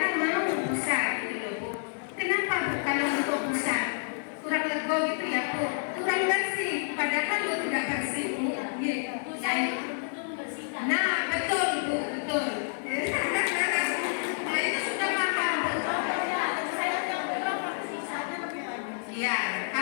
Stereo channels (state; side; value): silent; right; 59 dB below the other